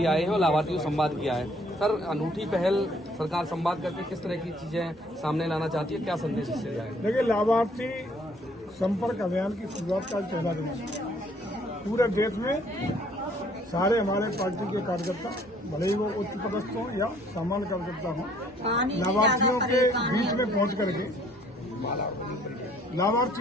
आए हैं और लाभार्थियों से संवाद किया है। सर, अनूठी पहल सरकार संवाद करके किस तरह की चीजें सामने लाना चाहती है, क्या संदेश इससे दिया है? देखिए, लाभार्थी संपर्क अभियान की शुरुआत का पहला दिन है। पूरे देश में सारे हमारे पार्टी के कार्यकर्ता, भले ही वो उच्च पदस्थ हों या सामान्य कार्यकर्ता हों, लाभार्थियों के बीच में पहुंच करके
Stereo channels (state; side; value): normal; both; correlation 0.61